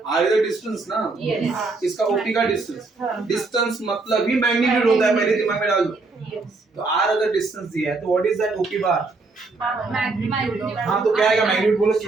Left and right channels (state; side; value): quieter; left; 3.7 dB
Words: r is the distance ना? Yes. इसका OP का distance. Distance मतलब ही magnitude होता है, पहले दिमाग में डाल दो. Yes. तो r अगर distance दिया है तो what is that OP bar? Magnitude. हाँ तो क्या आएगा? magnitude बोलो